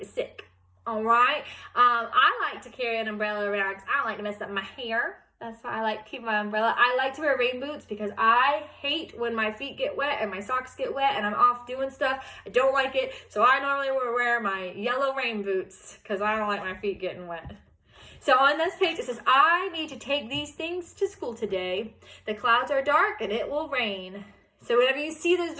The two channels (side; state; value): both; identical; correlation 1.00